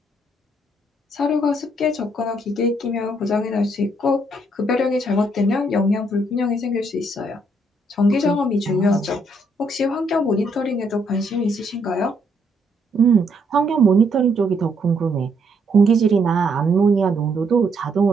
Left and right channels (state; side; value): normal; both; correlation 0.72